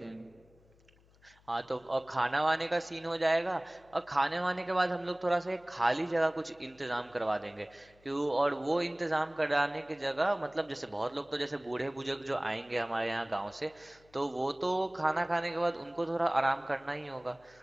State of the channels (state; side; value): noise; left; hum, 29 dB below the sound